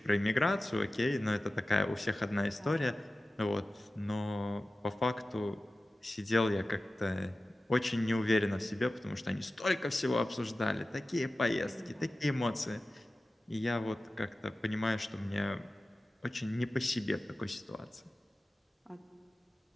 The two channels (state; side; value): normal; both; correlation 0.96